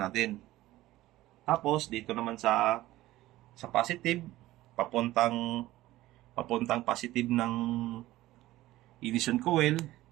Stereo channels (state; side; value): quieter; left; 16.4 dB